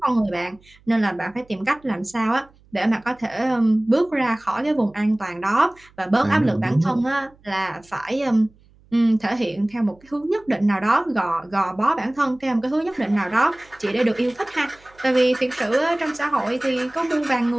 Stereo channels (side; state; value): right; noise; hum, 29 dB below the sound